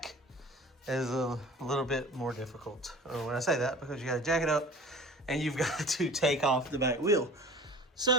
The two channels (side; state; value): both; normal; correlation 0.42